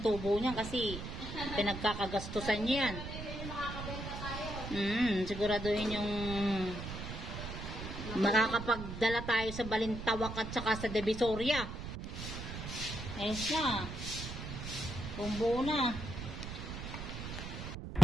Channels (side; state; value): right; noise; rumble, 7 dB below the sound